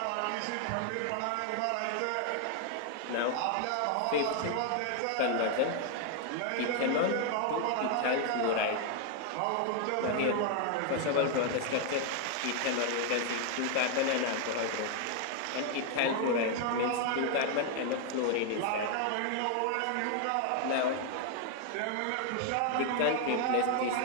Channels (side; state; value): both; different; correlation 0.00